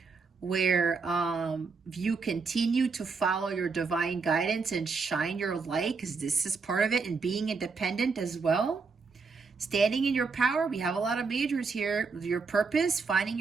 where you continue to follow your divine guidance and shine your light, because this is part of it, and being independent as well. Standing in your power. We have a lot of majors here. Your purpose, finding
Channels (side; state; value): left; quieter; 4.7 dB